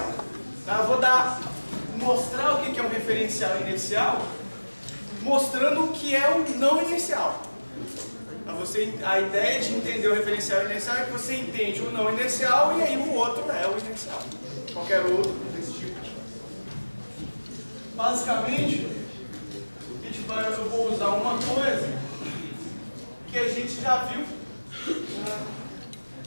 Tá? Eu vou mostrar o que é um referencial inercial, mostrando o que é o não inercial. A ideia de entender o referencial inercial é que você entende o não inercial e aí o outro é o inercial. Qualquer outro desse tipo. Basicamente, eu vou usar uma coisa que a gente já viu.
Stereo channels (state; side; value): inverted; both; correlation -1.00